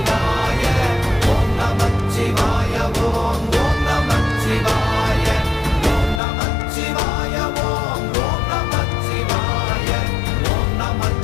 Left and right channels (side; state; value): right; drops out; at 6.2 s